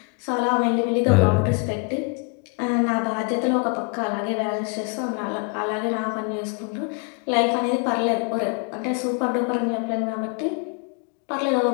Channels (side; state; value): right; quieter; 32.9 dB